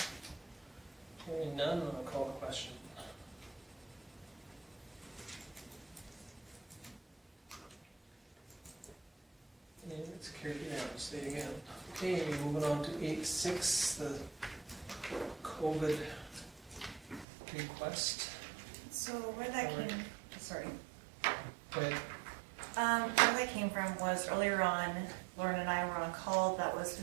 Hearing none, I'll call the question. And it's carried unanimously again. Okay, moving on to 8.6, the COVID request. So where that came, sorry. Go ahead. Where that came from was earlier on, Lauren and I were on a call that was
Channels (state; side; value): drops out; left; at 17.2 s